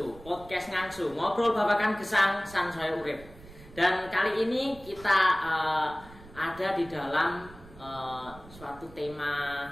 podcast ngangsu, ngobrol babakan gesang sansaya urip. Dan kali ini kita ada di dalam suatu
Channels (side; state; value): right; noise; rumble, 20 dB below the sound